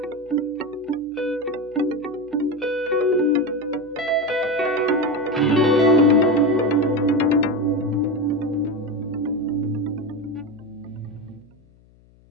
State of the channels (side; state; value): left; noise; hum, 29 dB below the sound